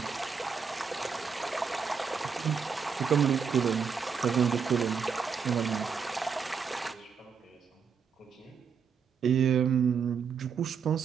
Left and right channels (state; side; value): quieter; left; 6.2 dB